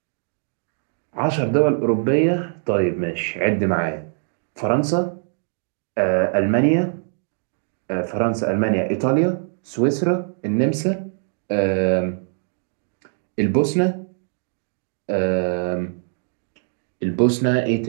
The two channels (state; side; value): silent; left; 64 dB below the other